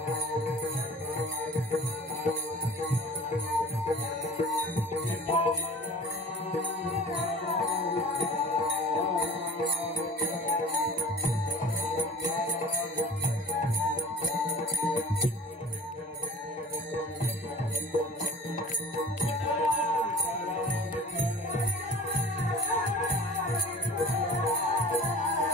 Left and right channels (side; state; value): both; normal; correlation 0.43